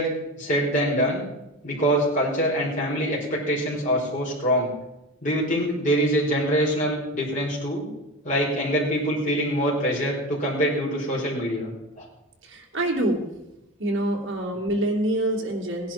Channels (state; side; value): normal; both; correlation 0.27